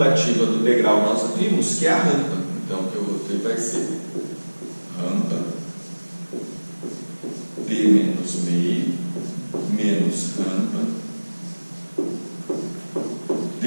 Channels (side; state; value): both; inverted; correlation -1.00